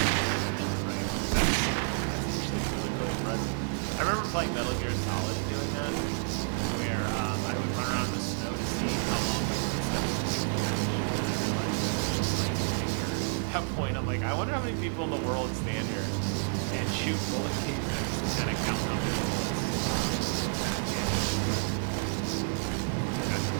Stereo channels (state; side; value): silent; left; 58 dB below the other